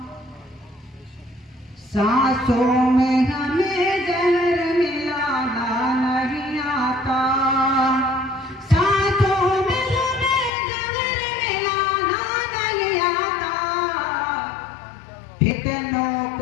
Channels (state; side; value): drops out; right; at 10.5 s